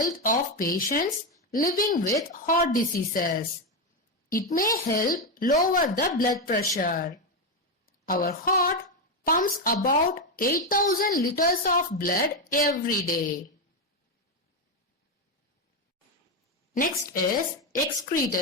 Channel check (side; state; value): both; normal; correlation 0.09